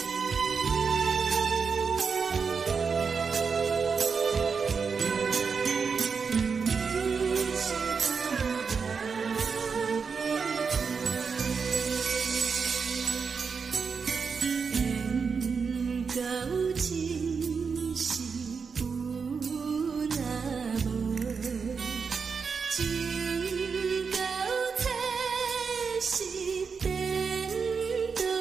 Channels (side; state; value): left; quieter; 5.6 dB